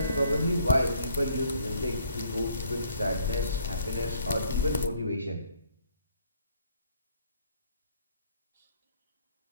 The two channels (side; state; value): both; inverted; correlation -0.64